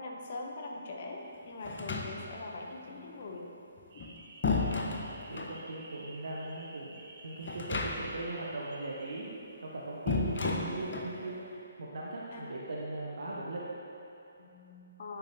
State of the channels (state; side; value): inverted; both; correlation -0.54